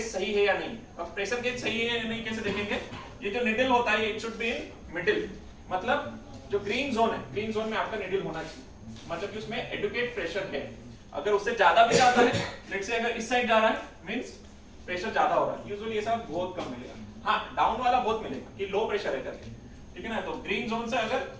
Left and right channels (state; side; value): identical; both; correlation 1.00